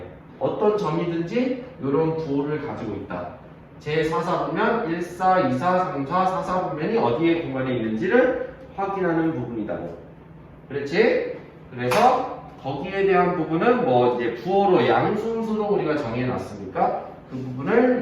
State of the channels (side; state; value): both; identical; correlation 1.00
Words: 어떤 점이든지 이런 부호를 가지고 있다. 제4사분면 1, 4, 2, 4, 3, 4, 4사분면이 어디에 공간에 있는지를 확인하는 부분이다고. 그렇지? 그래서 거기에 대한 부분은 뭐 이제 부호로 양순수로 우리가 정해놨으니까 그